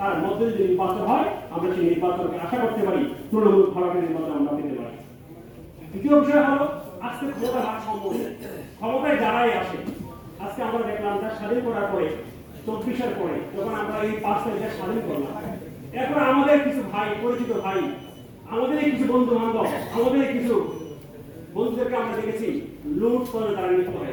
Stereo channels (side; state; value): both; identical; correlation 1.00